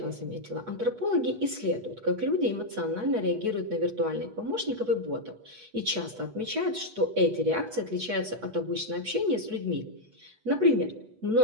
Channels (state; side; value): late; left; 8.2 ms